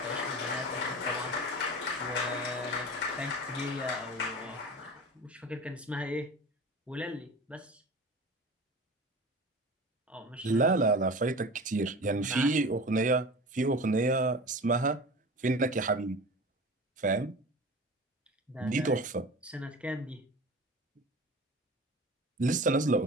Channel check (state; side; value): normal; both; correlation 0.35